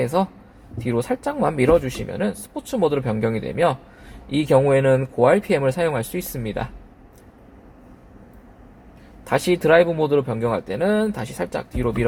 뒤로 살짝만 밀어주시면 스포츠 모드로 변경이 되며 이 경우에는 고RPM을 사용할 수 있습니다. 다시 드라이브 모드로 변경할 때는 다시 살짝 뒤로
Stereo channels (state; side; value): identical; both; correlation 1.00